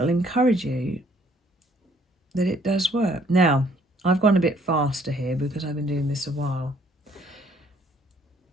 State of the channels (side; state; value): both; normal; correlation 0.63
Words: encourage you that it does work. Now, I've gone a bit faster here because I've been doing this a while.